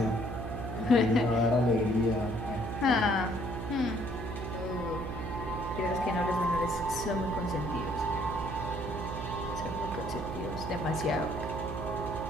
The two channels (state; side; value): noise; right; hum, 6 dB below the sound